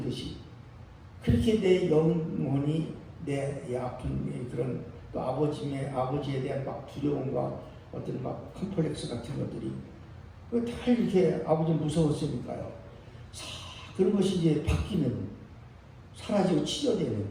그렇게 내 영혼이 내 아픈 그런 또 아버지에 대한 막 두려움과 어떤 막 컴플렉스 같은 것들이 다 이렇게 아버지 무서웠으니까요. 그런 것이 이제 바뀌는 사라지고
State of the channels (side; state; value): both; identical; correlation 1.00